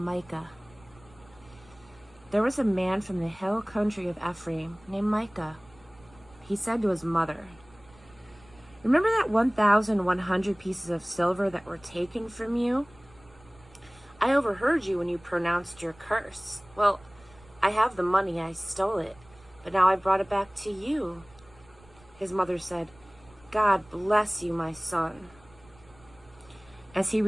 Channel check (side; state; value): right; noise; rumble, 26 dB below the sound